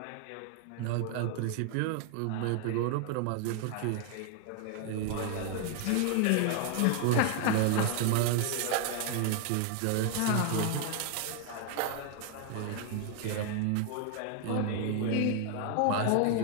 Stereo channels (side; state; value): both; different; correlation 0.00